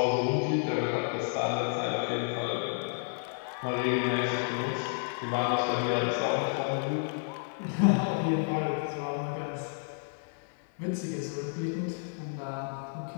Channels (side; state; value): right; silent; 57 dB below the other